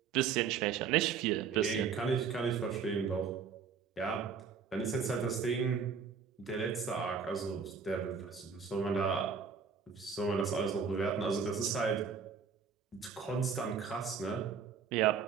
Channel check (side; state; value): left; quieter; 6.2 dB